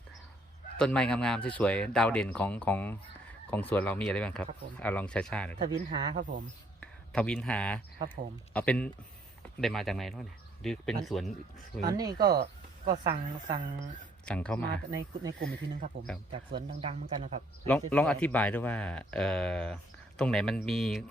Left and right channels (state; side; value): normal; both; correlation 0.66